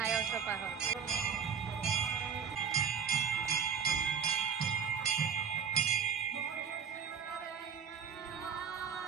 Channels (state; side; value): quieter; left; 7.0 dB